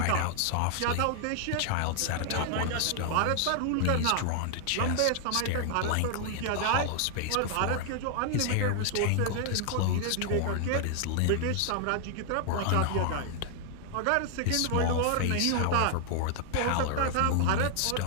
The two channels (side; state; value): both; different; correlation 0.00